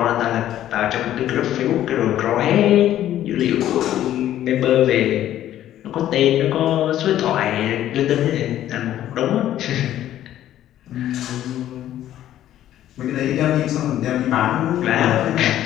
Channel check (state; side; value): quieter; right; 12.3 dB